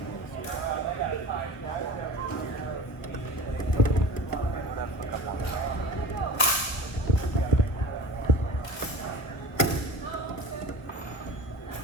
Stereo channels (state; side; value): late; right; 1.1 ms